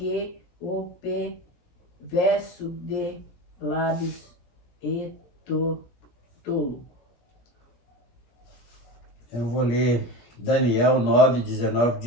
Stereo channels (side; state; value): right; late; 17 ms